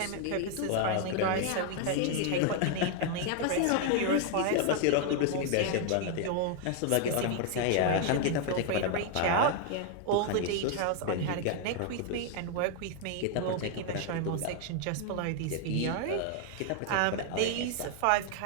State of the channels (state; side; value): different; both; correlation 0.00